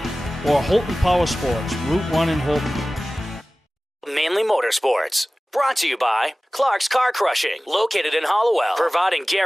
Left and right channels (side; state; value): both; normal; correlation 0.97